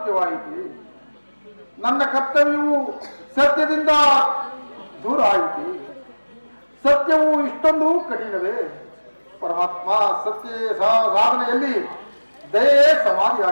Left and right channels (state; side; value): inverted; both; correlation -1.00